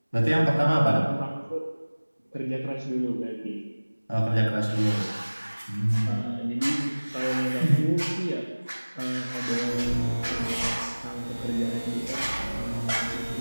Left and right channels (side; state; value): both; inverted; correlation -1.00